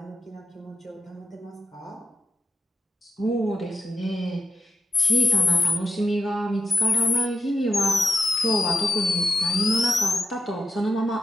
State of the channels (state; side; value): normal; both; correlation 0.85